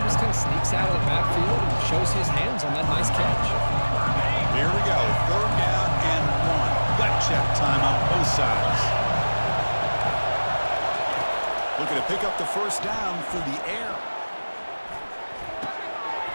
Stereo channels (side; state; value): both; inverted; correlation -1.00